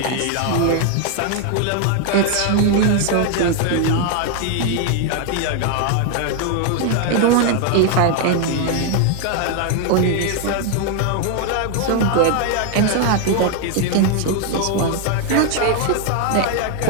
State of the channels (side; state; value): both; different; correlation 0.00